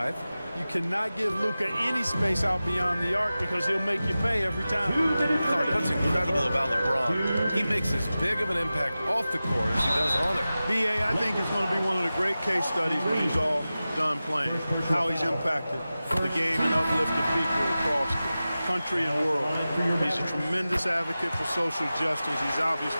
You cannot give Luka any space out beyond the arc because he'll make you pay every time. Clark, what's incredible about LeBron, he makes as big of an impact off the court as he does on it. B.A., I think it's going to be one of the great case studies when he's all done playing, how he's impacted the game and uplifted people across the country and world. He's a tremendous advocate for social justice. He's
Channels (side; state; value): both; inverted; correlation -0.95